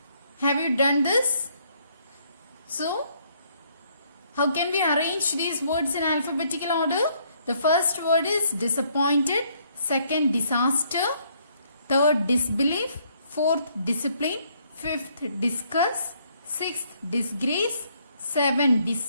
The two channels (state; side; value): inverted; both; correlation -0.68